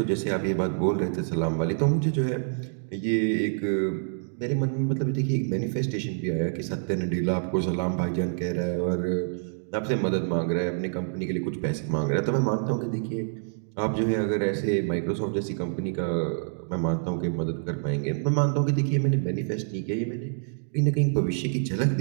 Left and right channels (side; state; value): left; silent; digital silence